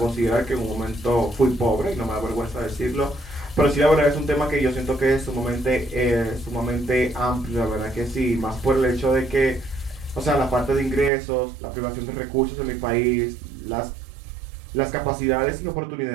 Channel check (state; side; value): drops out; left; at 11.1 s